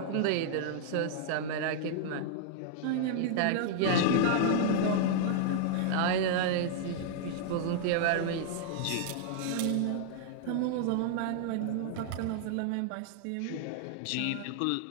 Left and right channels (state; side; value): different; both; correlation -0.01